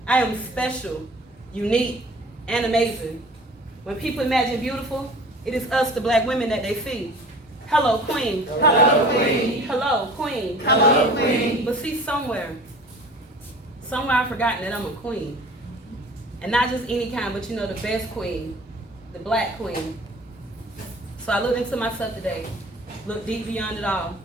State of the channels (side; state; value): both; normal; correlation 0.44